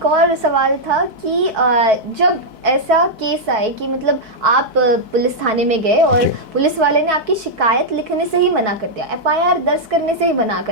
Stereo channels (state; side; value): late; left; 4.6 ms